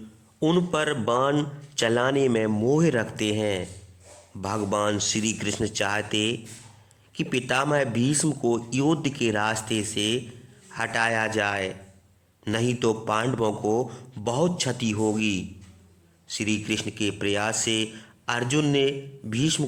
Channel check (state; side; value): identical; both; correlation 1.00